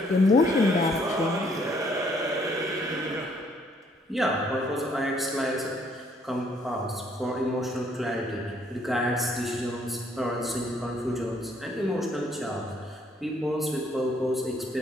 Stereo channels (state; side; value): normal; both; correlation 0.66